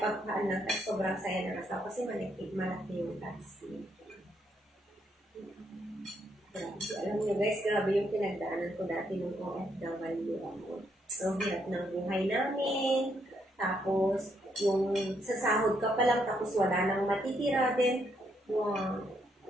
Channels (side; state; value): both; normal; correlation 0.75